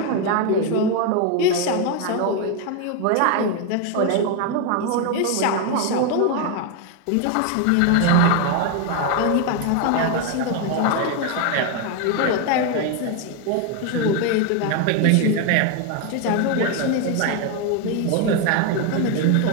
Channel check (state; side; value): different; both; correlation 0.01